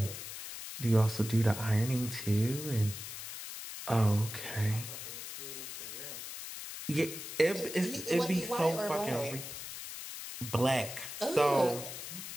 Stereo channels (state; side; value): noise; left; hiss, 9 dB below the sound